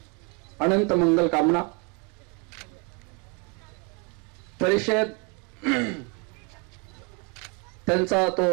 अनंत मंगल कामना. परिषद त्यांचा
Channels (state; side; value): quieter; left; 33.4 dB